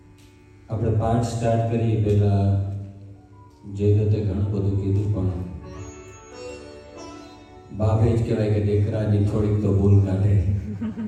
આપણે પાઠ સ્ટાર્ટ કરીએ પહેલા જયદત્તે ઘણું બધું કીધું, પણ બાપે જ કહેવાય કે દીકરાની થોડીક તો ભૂલ કાઢે.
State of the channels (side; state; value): both; identical; correlation 1.00